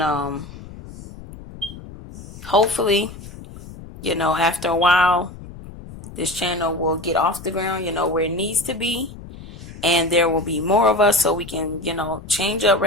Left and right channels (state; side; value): noise; left; rumble, 15 dB below the sound